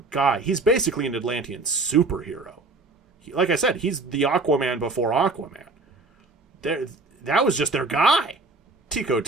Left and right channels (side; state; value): left; quieter; 3.4 dB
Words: guy. He's basically an Atlantean superhero. Like I said, he's the Aquaman before Aquaman. That was just their guy. Tico